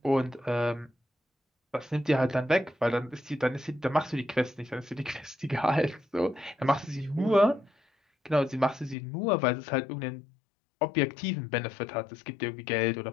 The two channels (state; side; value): drops out; right; at 9.0 s